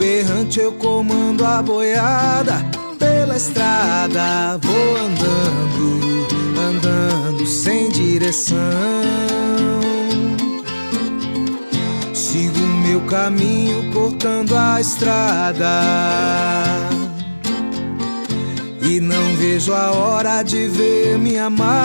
eu comando a boiada. Pela estrada vou andando, andando sem direção. Sigo meu caminho cortando a estrada e não vejo a hora de ver minha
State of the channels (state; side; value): inverted; both; correlation -1.00